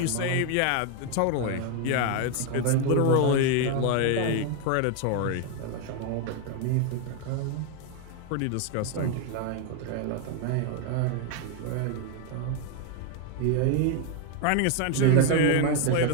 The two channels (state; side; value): different; both; correlation 0.01